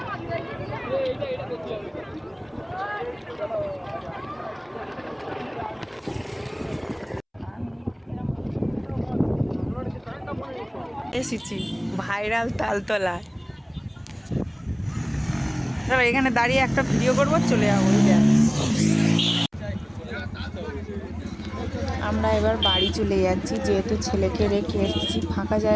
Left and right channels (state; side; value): identical; both; correlation 1.00